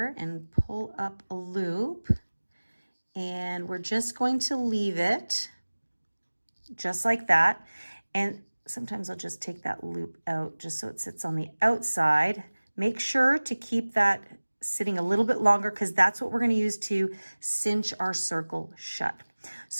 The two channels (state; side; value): inverted; both; correlation -1.00